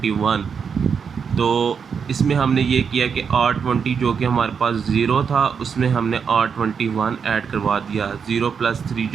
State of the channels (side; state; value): left; quieter; 6.4 dB